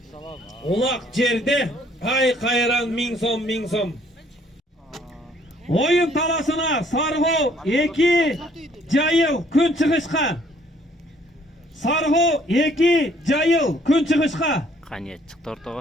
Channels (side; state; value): both; normal; correlation 0.62